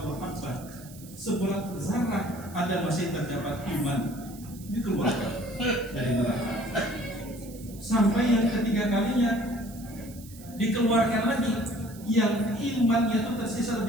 habbah. Seberat zarrah ada masih terdapat iman, dikeluarkan dari neraka. Sampai yang ketiga kalinya dikeluarkan lagi yang imannya itu tersisa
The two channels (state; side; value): noise; right; hiss, 19 dB below the sound